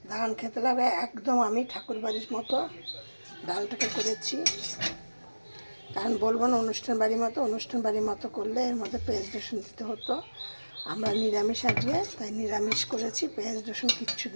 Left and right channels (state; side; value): inverted; both; correlation -1.00